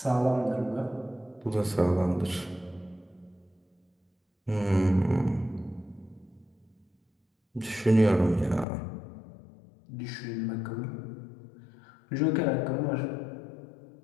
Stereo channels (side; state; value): right; drops out; at 8.7 s